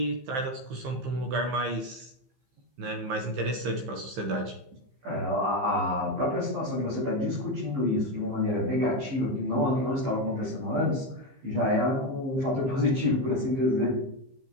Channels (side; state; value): left; late; 15 ms